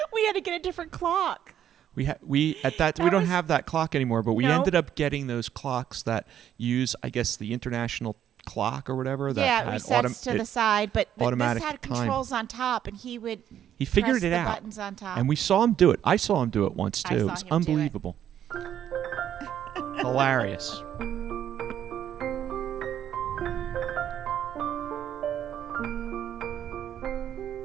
We had to get a different clock. We don't That have that clock anymore, but we No. ended up getting those clocks that use, I guess, the international clock or whatever. That Yeah, it had resets to the side, but this automatic had time. controls on top, and he would He figured press it the out, buttons on top. and we saw him do it. I saw him do it once I too. saw It was him do it. unbelievable, hilarious.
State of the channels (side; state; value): left; quieter; 10.2 dB